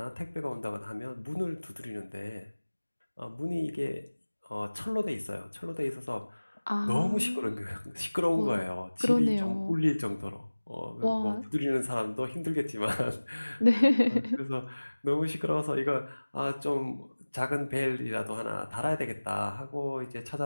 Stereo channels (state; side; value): inverted; both; correlation -1.00